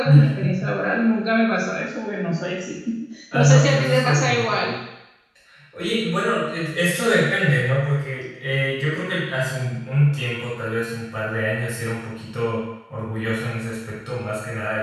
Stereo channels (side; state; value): both; identical; correlation 1.00